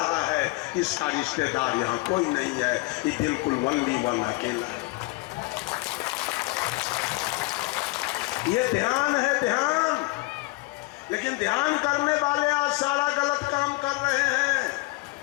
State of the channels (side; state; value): right; quieter; 23.7 dB